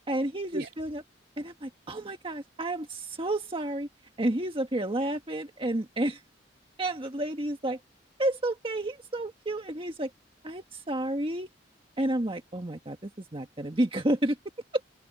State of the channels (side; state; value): both; normal; correlation 0.66